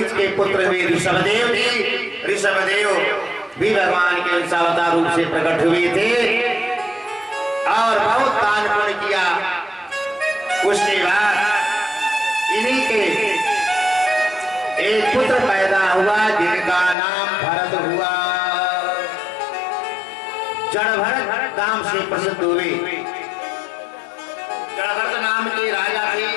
के पुत्र हुए ऋषभदेव जी। ऋषभदेव भी भगवान के अवतार रूप से प्रकट हुए थे और बहुत दान पुण्य किया। उसके बाद इन्हीं के एक पुत्र पैदा हुआ जिनका नाम भरत हुआ। जड़भरत नाम से प्रसिद्ध हुए। जड़भरत नाम के राजा थे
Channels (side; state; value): right; drops out; at 16.9 s